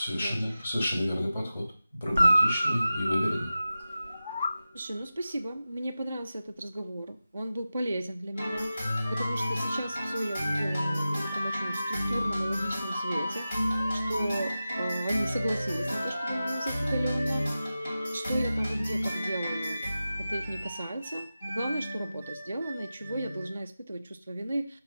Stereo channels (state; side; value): inverted; both; correlation -0.94